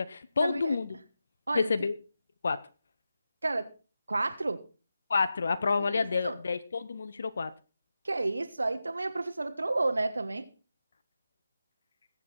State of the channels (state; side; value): inverted; both; correlation -0.91